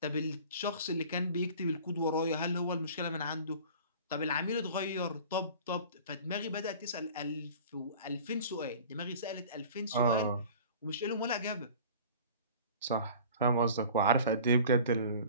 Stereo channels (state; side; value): inverted; both; correlation -0.43